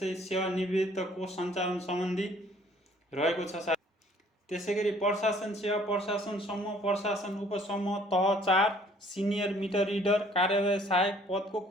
सेवानिवृत्त कोष सञ्चालन सम्बन्धी रहेको छ। त्यसै गरी प्रशासन सेवा, प्रशासन समूह, प्रशासन उपसमूह तह 4 सिनियर मिटर रिडर कार्यालय सहायक पदको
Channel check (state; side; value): normal; both; correlation 0.58